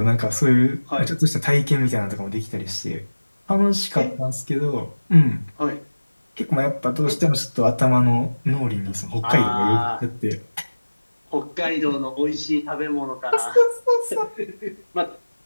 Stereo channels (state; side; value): inverted; both; correlation -1.00